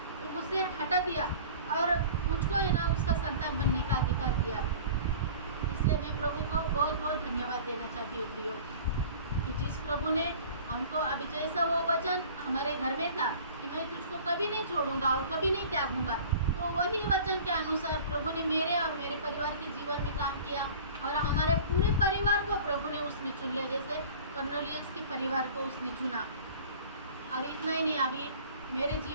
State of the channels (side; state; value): both; inverted; correlation -0.43